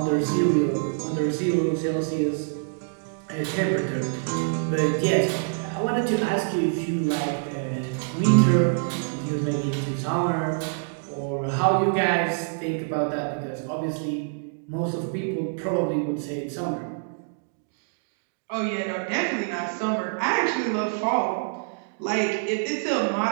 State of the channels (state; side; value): silent; left; digital silence